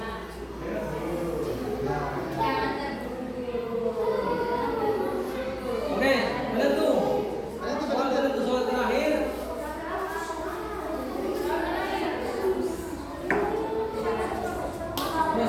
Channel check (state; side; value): identical; both; correlation 1.00